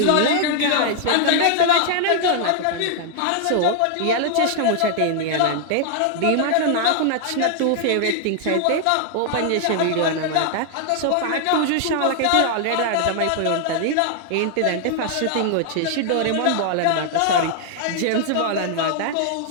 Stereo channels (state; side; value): different; both; correlation 0.00